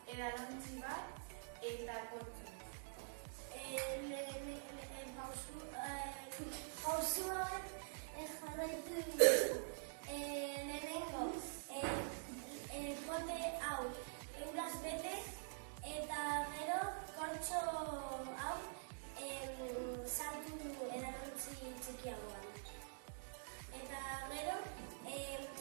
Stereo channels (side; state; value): left; silent; digital silence